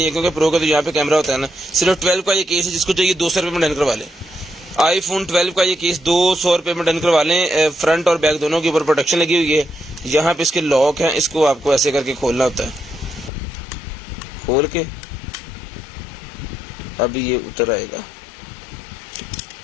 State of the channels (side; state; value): right; drops out; at 13.3 s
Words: है क्योंकि प्रो का तो यहाँ पे कैमरा होता है ना। सिर्फ 12 का ये केस है, जिसको चाहिए 200 रुपये में डन करवा लें। आईफोन 12 का ये केस 200 रुपये में डन करवा लें। फ्रंट और बैक दोनों के ऊपर प्रोटेक्शन लगी हुई है। यहाँ पे इसके लॉक हैं, इसको आपको ऐसे करके खोलना होता है। खोल के अभी ये उतर आएगा।